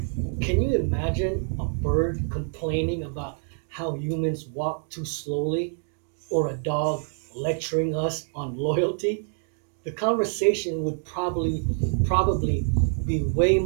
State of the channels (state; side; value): silent; left; 59 dB below the other